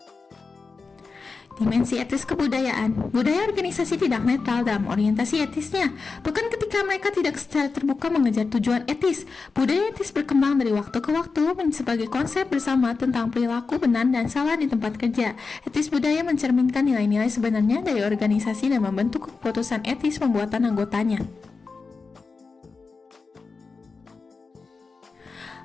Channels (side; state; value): right; quieter; 4.4 dB